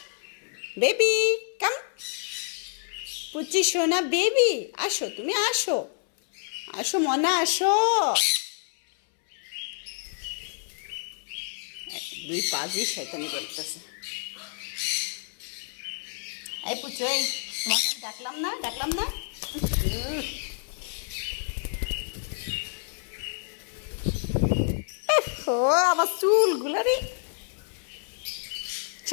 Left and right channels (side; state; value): right; silent; 59 dB below the other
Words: বেবি কাম। পুচি সোনা বেবি আসো, তুমি আসো আসো মনা আসো। দুই পা দিয়ে শয়তানি করতেছে। এই পুচু, এই তোমাকে আমি ডাকলাম না, ডাকলাম না? ও আমার চুলগুলো রে।